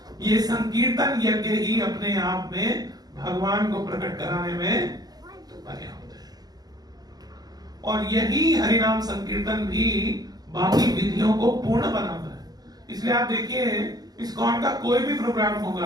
ये संकीर्तन यज्ञ ही अपने आप में भगवान को प्रकट कराने में पर्याप्त है। और यही हरिनाम संकीर्तन भी बाकी विधियों को पूर्ण बनाता है। इसलिए आप देखिए इस्कॉन का कोई भी प्रोग्राम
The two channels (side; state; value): left; late; 0.19 ms